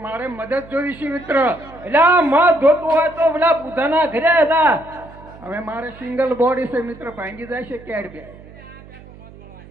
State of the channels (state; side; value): noise; right; hum, 20 dB below the sound